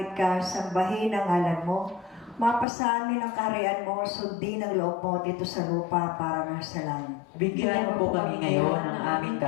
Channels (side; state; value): right; drops out; at 2.7 s